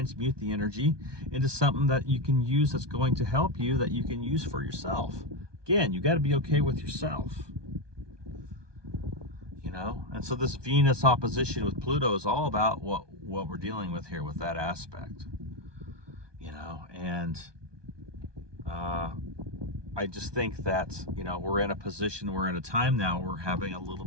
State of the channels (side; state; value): left; late; 1.2 ms